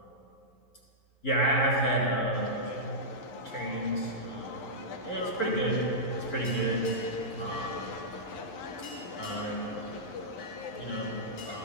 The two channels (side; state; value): right; late; 11 ms